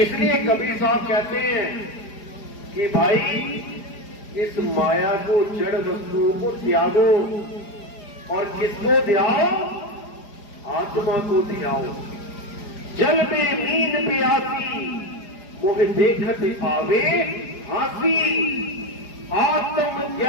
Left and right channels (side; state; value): right; late; 4.9 ms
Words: कबीर साहब कहते हैं कि भाई इस माया को, जड़ वस्तुओं को त्यागो और किसको ध्याओ? आत्मा को ध्याओ। जल में मीन प्यासी मोह देखत पावे हासी, आत्म